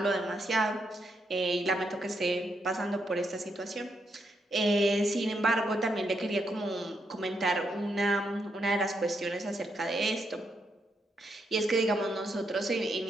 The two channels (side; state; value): both; normal; correlation 0.79